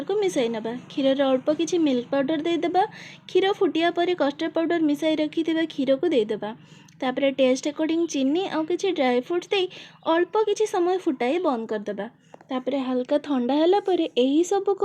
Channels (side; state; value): both; identical; correlation 1.00